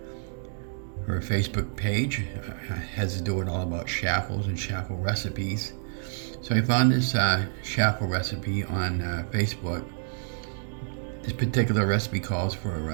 Facebook page has to do with all about Chaffles and Chaffle recipes. So I found this Chaffle recipe on Facebook. This particular recipe calls for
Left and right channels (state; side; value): silent; left; digital silence